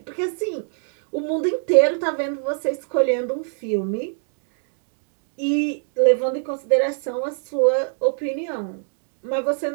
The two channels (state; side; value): silent; left; digital silence